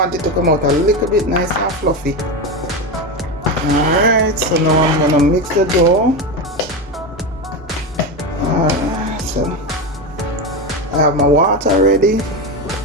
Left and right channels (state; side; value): normal; both; correlation 0.17